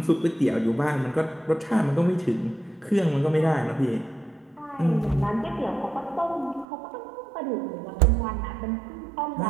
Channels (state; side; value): drops out; left; at 6.7 s